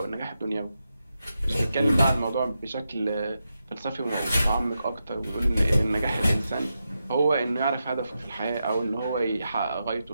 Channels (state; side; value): inverted; both; correlation -0.88